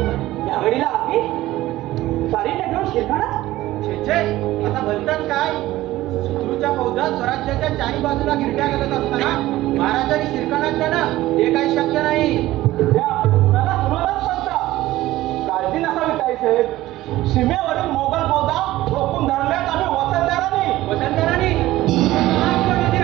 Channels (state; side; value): quieter; left; 16.3 dB